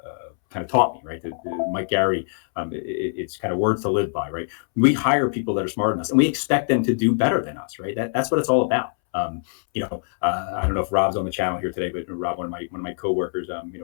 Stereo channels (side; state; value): right; silent; 63 dB below the other